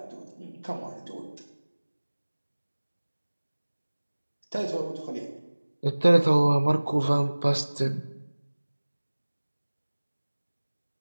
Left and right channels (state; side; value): inverted; both; correlation -1.00